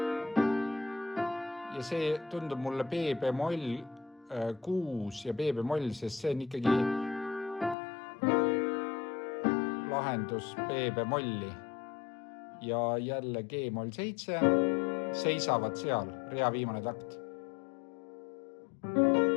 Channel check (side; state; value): right; drops out; at 7.8 s